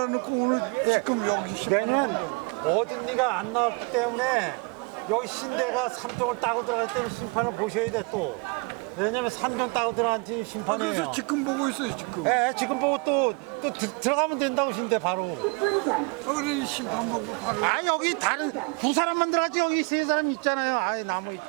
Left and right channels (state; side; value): quieter; left; 31.3 dB